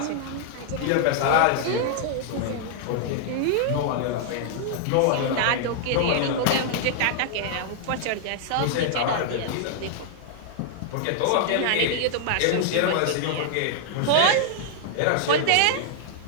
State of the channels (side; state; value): both; different; correlation -0.01